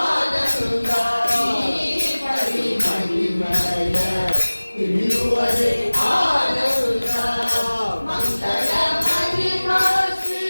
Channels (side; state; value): both; inverted; correlation -1.00